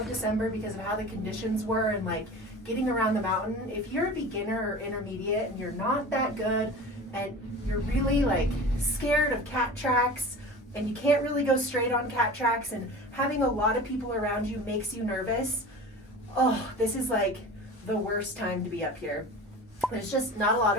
December because of how the conditions were and like getting around the mountain. If you're a beginner or intermediate and you're not that good and you're really like scared of cat tracks and you can't really go straight on cat tracks and having a lot of people around you makes you nervous, oh, this is like the worst time to be up here. There's just not a lot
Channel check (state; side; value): normal; both; correlation 0.36